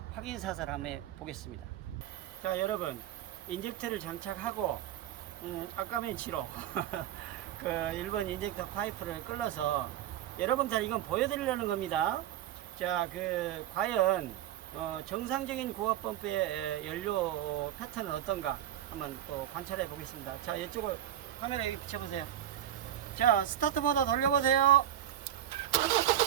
확인 사살 한번 보겠습니다. 자, 여러분, 인젝터를 장착하고 아까맨치로 그 1번 인젝터 파이프를 끌어서 여러분들 이건 보여드리려는 겁니다. 자, 과연 정상적인 고압 펌프의 연료 패턴은 어떤가 한번 또 관찰해 보겠습니다. 자, 이쪽을 카메라에 비춰보세요. 자, 스타트 모드 돌려보세요.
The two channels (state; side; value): quieter; left; 11.4 dB